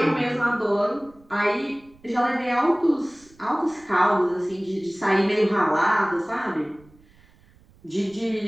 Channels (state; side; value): noise; right; rumble, 29 dB below the sound